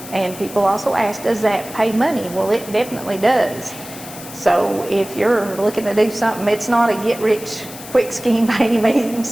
and people also ask, does that pay money? Well, it definitely does. So if you're looking to do something, it's not a get-rich-quick scheme by any means.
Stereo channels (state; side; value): noise; left; hiss, 14 dB below the sound